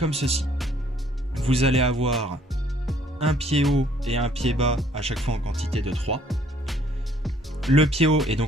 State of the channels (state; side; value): normal; both; correlation 0.62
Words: ceci. Vous allez avoir un pied haut et un pied bas à chaque fois en quantité de 3. Le pied haut est